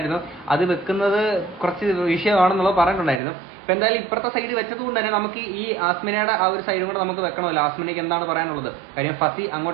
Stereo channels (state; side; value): drops out; left; at 3.2 s